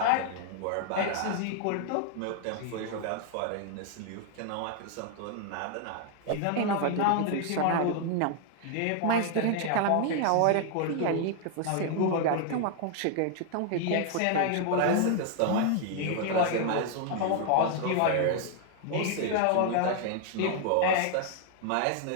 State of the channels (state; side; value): different; both; correlation 0.00